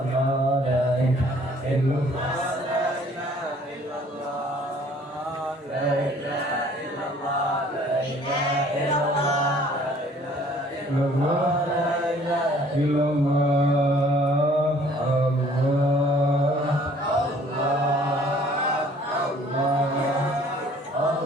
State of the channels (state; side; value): normal; both; correlation 0.56